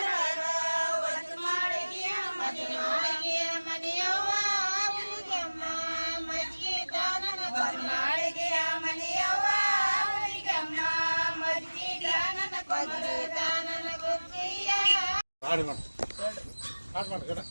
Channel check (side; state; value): both; inverted; correlation -1.00